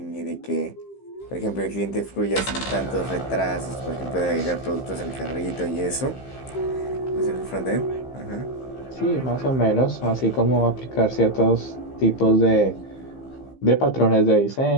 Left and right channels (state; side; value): late; right; 15 ms